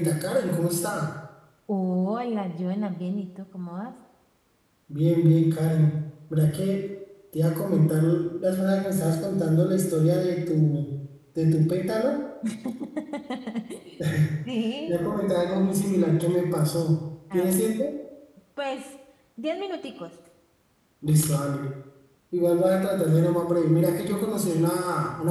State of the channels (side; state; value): both; identical; correlation 1.00